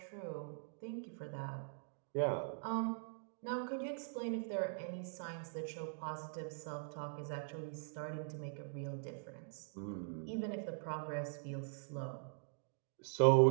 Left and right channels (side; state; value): left; silent; digital silence